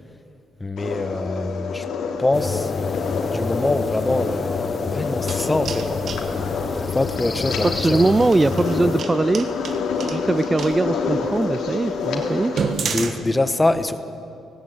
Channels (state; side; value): normal; both; correlation 0.88